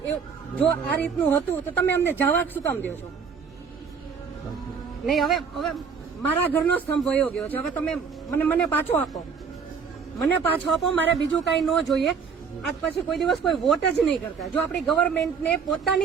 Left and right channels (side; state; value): left; quieter; 6.0 dB